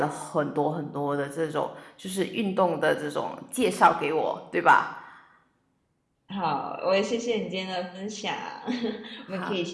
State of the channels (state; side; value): identical; both; correlation 1.00